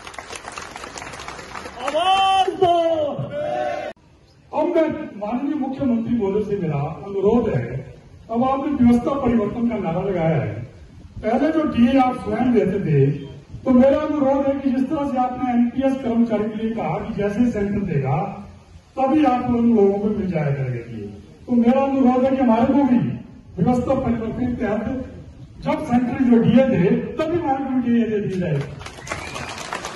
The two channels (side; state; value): both; identical; correlation 1.00